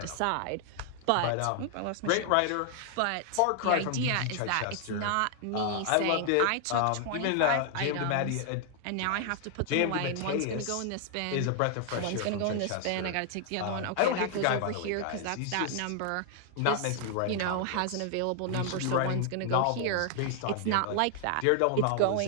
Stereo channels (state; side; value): different; both; correlation 0.00